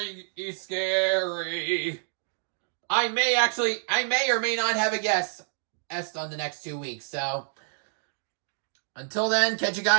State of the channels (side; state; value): left; silent; digital silence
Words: scary. I may or may not have a guest on the next 2 weeks. So, until then, catch you